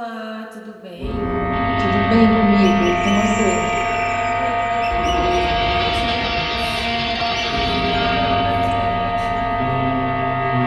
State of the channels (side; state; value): both; identical; correlation 1.00